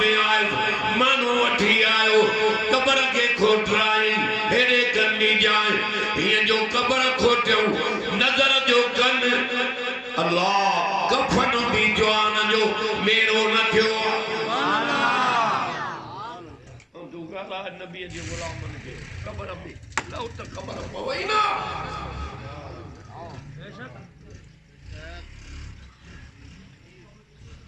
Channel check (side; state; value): both; identical; correlation 1.00